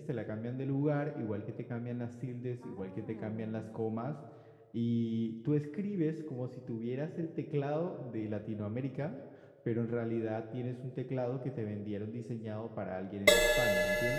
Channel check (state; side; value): identical; both; correlation 1.00